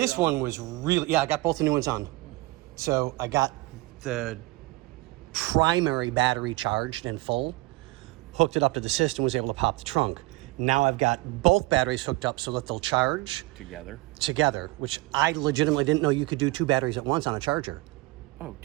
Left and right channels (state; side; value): quieter; left; 21.5 dB